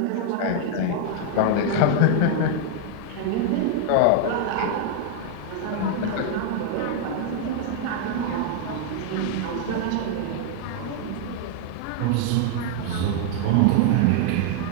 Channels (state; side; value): different; both; correlation 0.00